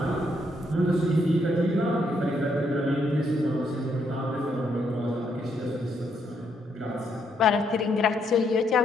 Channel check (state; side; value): normal; both; correlation 0.74